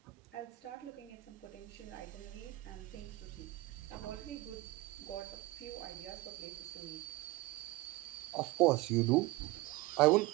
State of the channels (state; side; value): quieter; left; 19.8 dB